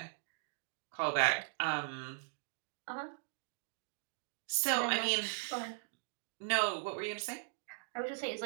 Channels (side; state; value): left; silent; digital silence